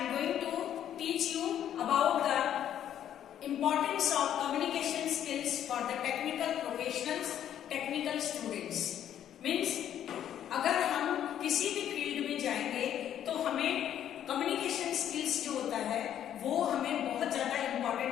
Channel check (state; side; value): quieter; right; 10.4 dB